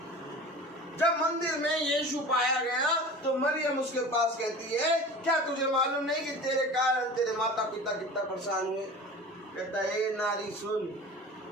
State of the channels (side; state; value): both; normal; correlation 0.37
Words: जब मंदिर में यीशु पाया गया तो मरियम उसके पास कहती है क्या तुझे मालूम नहीं कि तेरे कारण तेरे माता पिता कितना परेशान हुए? कहता है नारी सुन,